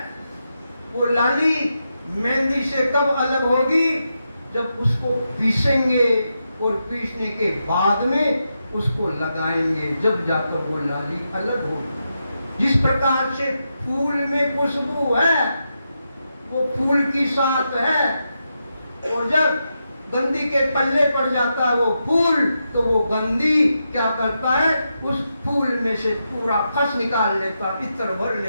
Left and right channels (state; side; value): inverted; both; correlation -0.86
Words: वो लाली मेहंदी से कब अलग होगी जब उसको पीसेंगे और पीसने के बाद में उसको लगाएंगे, जब जाकर वो लाली अलग होगी। जिस प्रकार से फूल में खुशबू है वो फूल की साथ है, और जब गंदी के पल्ले पड़ जाता है वो फूल तो वो गंदी क्या करता है, उस फूल में से पूरा खस निकाल लेता, इत्र भर